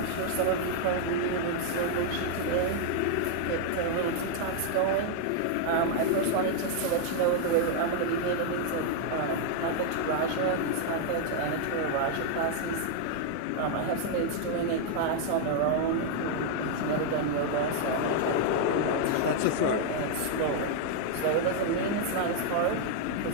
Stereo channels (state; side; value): different; both; correlation 0.00